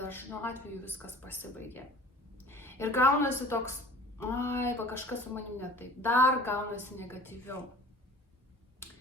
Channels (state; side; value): normal; both; correlation 0.45